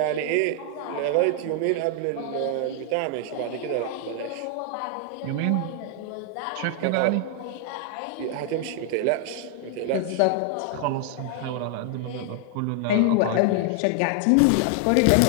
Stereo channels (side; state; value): both; different; correlation 0.00